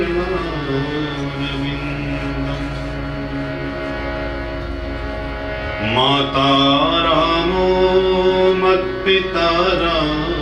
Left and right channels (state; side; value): identical; both; correlation 1.00